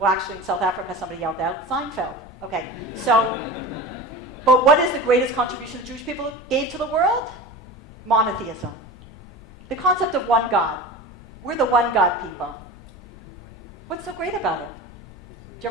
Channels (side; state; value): both; normal; correlation 0.31